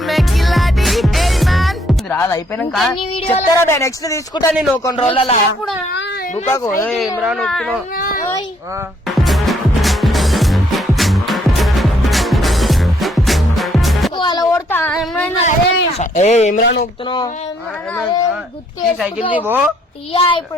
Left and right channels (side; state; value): both; normal; correlation 0.68